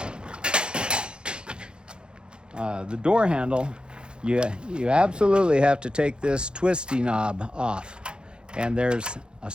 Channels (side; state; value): left; late; 0.050 ms